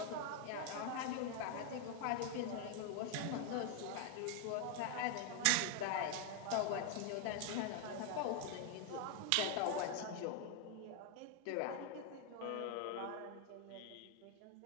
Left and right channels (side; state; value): both; different; correlation 0.01